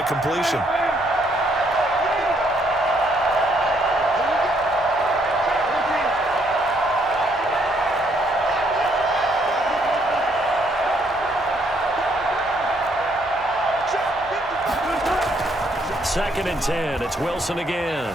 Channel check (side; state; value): right; noise; hum, 24 dB below the sound